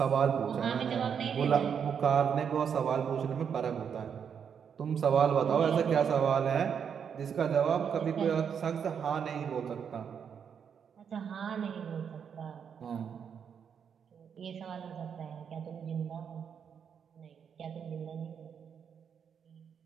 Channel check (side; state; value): left; quieter; 7.4 dB